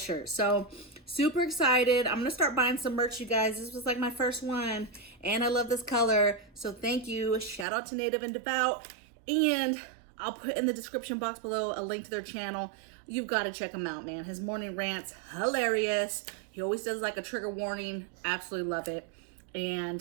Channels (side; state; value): left; drops out; at 7.7 s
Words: So super excited. I'm going to start buying some merch, you guys. This was like my first one. And I love this color. So thank you. Shout out to Native and Devout. And I'll put in the description box below a link to their channel. You've got to check him out, man. His morning rants, hilarious. He always does like a trigger warning. Absolutely love it.